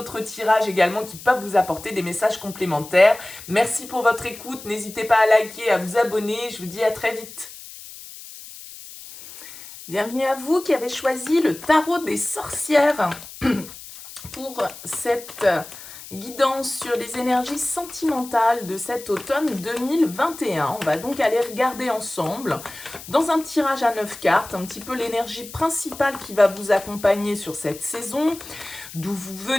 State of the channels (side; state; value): left; noise; hiss, 15 dB below the sound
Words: tirages également qui peuvent vous apporter des messages complémentaires. Merci pour votre écoute. N'hésitez pas à liker, à vous abonner. Je vous dis à très vite. Bienvenue à vous qui avez choisi le tarot des sorcières pour cette guidance sur les énergies sentimentales de cet automne 2021. On va donc aller regarder ensemble dans un tirage à 9 cartes un petit peu l'énergie principale qui va vous accompagner sur cette saison, d'où vous